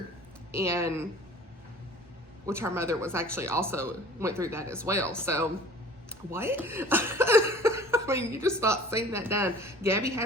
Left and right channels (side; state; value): both; normal; correlation 0.46